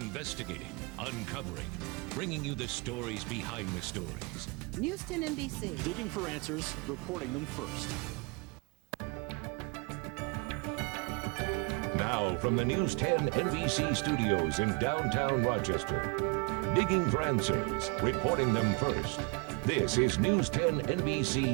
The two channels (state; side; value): quieter; left; 29.7 dB